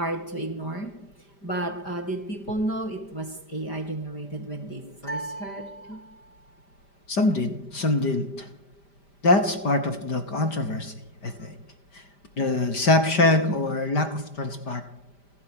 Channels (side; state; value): right; late; 5.1 ms